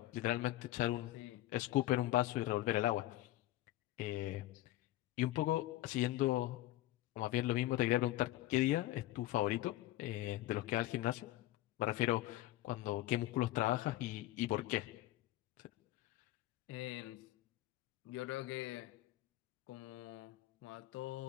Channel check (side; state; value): right; quieter; 16.0 dB